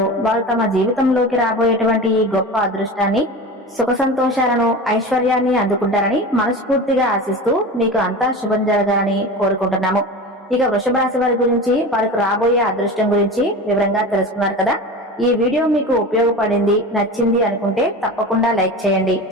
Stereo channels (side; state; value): both; normal; correlation 0.30